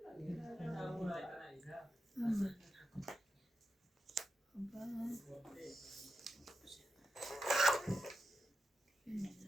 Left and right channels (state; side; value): normal; both; correlation 0.89